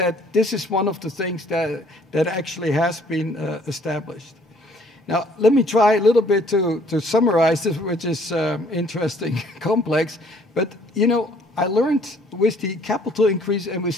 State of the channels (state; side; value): normal; both; correlation 0.60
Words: this is one of the things that actually has been established. Now, let me try a little bit to summarize this, which is interesting, complex. But, you know, I learned with the capital increase and